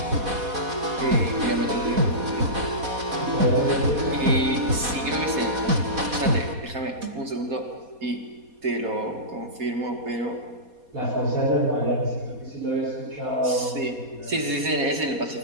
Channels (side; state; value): left; late; 4.2 ms